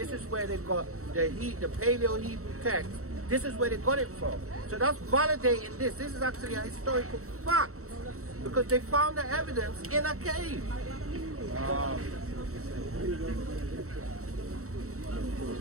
is where they got the Paleo-Hebrew text. This is where they got it from. So that's validating this. This is actually a historical fact, because they found the evidence in a cave.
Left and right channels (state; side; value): late; left; 0.64 ms